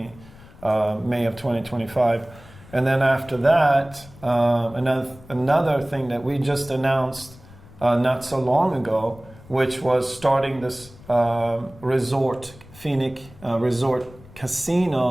May of 2025. And then after that, another thing that we just announced not so long ago, which was starting this resort, Phoenix Resort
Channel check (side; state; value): left; noise; rumble, 22 dB below the sound